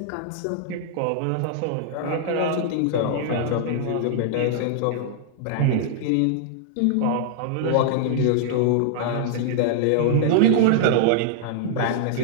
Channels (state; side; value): different; both; correlation -0.01